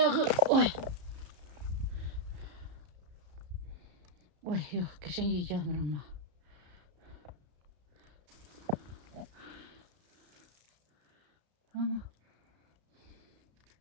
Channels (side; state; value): left; late; 33 ms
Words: Oy. Oy yok geçen iyi gelmir ama. Ama.